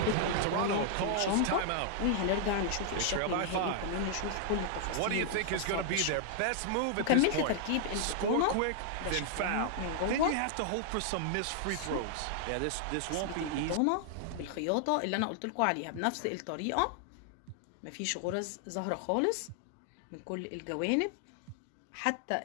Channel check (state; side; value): different; both; correlation -0.01